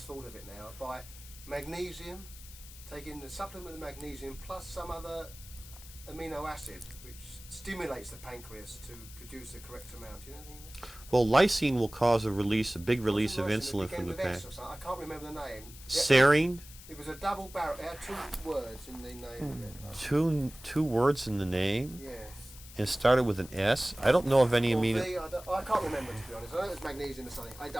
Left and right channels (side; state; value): left; noise; hiss, 17 dB below the sound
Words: full of it now, by magnesium, taking the supplement of magnesium plus some other amino acid, which stimulates the pancreas to produce the correct amount. Do you know anything? Well, lysine will cause a big release of Nice, insulin it from the began with pancreas. S or something. I can't remember the name. Serine, It was a double barrel. It had 2 words in the name of it. two words in the name, Yes. and it started with an S. I don't know of any Or amino. V, I can't remember, to be honest. I know it was magnesium or something.